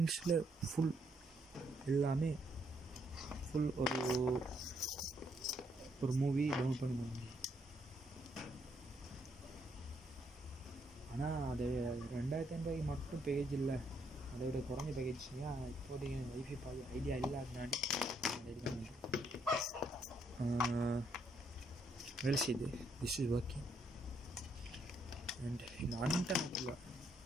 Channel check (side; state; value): both; normal; correlation 0.73